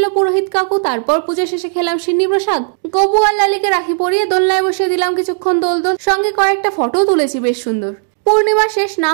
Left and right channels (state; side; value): silent; left; digital silence